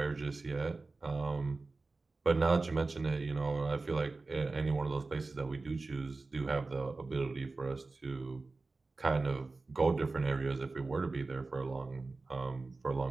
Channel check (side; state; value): left; quieter; 3.6 dB